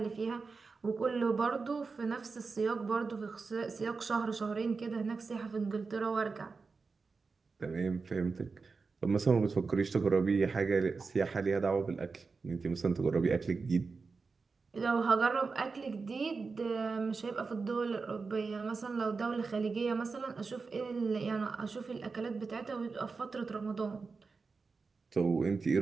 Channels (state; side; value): quieter; left; 4.5 dB